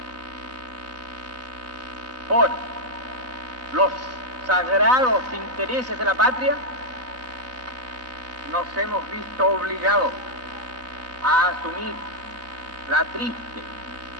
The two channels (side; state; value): left; late; 3.9 ms